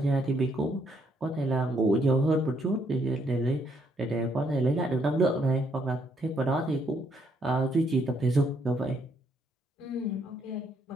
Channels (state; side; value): normal; both; correlation 0.72